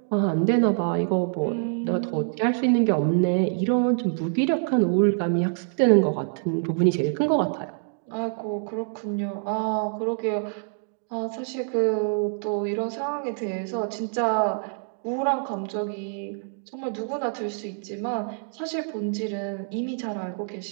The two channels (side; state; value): left; silent; digital silence